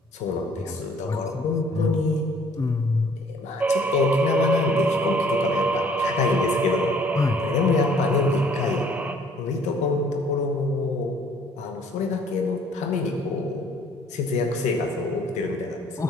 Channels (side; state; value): both; normal; correlation 0.58